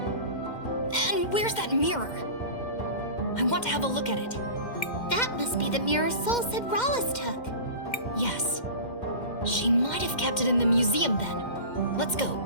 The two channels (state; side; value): late; right; 2.1 ms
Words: And where's that mirror? I want to have a look at it. That must be the mirror Soul said Rhallus took. Yes. She might have kept it in the museum then. Let's go.